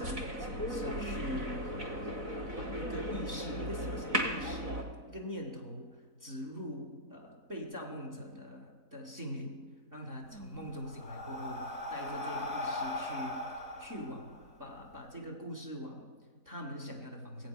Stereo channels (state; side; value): late; left; 4.0 ms